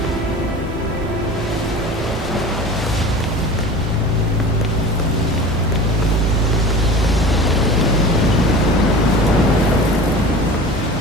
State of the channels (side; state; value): both; normal; correlation 0.36